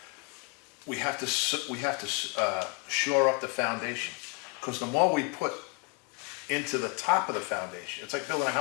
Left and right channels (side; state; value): right; quieter; 30.3 dB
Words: we have to shore up the foundation. Because the more we put into the top of the foundation, it's like building a